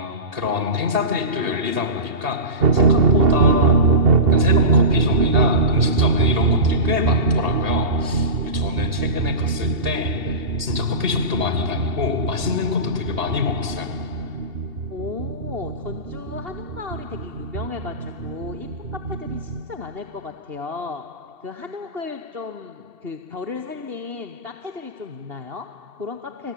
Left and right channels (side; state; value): left; late; 2.7 ms